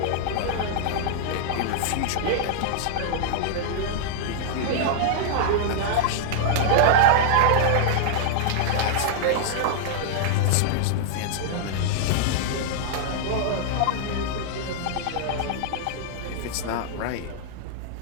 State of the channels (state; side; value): different; both; correlation -0.01